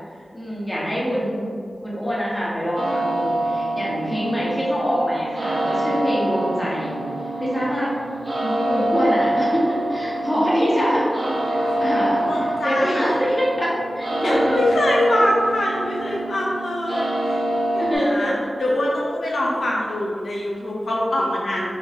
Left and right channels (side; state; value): both; normal; correlation 0.93